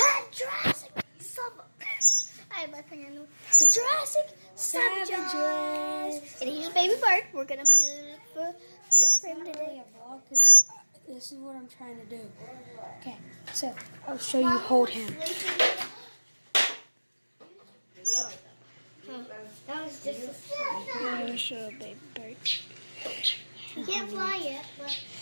Jurassic Summer. I have my finger in the Jurassic Savages. And here's Baby Bird. We're gonna be for him today. This is what I'm trying to do. Okay, so I'll show you hold him. That was just a I'll show Baby Bird. He can't fly yet, but.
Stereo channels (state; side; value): inverted; both; correlation -1.00